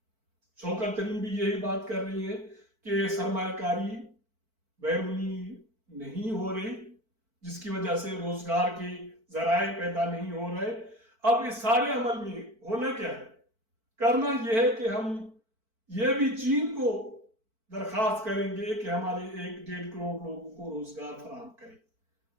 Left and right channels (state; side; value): late; left; 4.5 ms